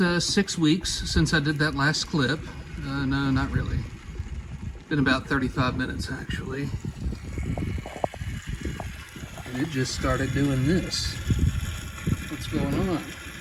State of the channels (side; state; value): both; identical; correlation 1.00